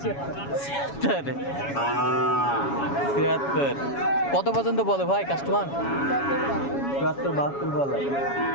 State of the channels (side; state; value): right; late; 7.2 ms